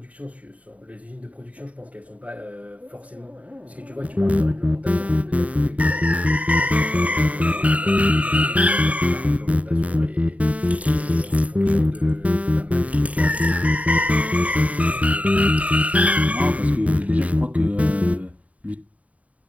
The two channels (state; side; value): late; left; 0.069 ms